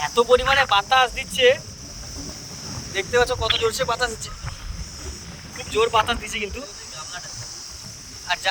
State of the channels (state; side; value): identical; both; correlation 1.00